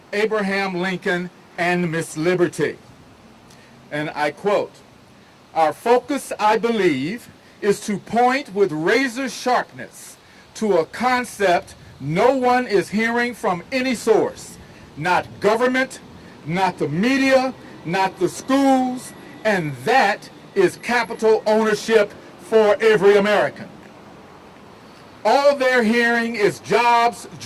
Abraham Lincoln and Miss Liberty. And I quote, "Our focus, I believe, is to point with razor sharpness to a concept no one is hearing from any source, not government, not the media, not the schools, and that is capital ownership for every American. All they're hearing is jobs,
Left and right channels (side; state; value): both; identical; correlation 1.00